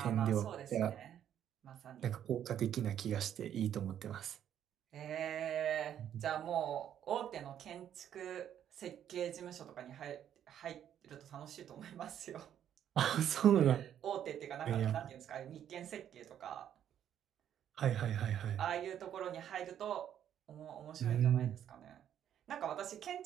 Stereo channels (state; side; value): quieter; left; 10.0 dB